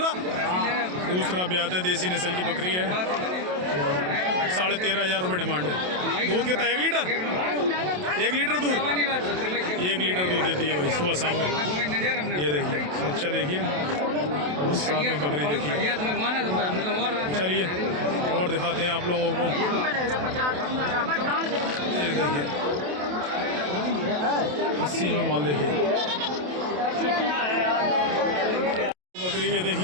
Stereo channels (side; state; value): left; late; 27 ms